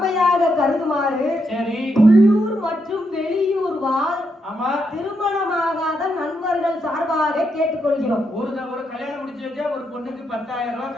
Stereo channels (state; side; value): normal; both; correlation 0.80